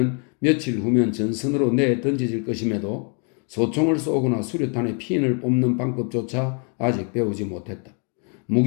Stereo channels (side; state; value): right; quieter; 38.5 dB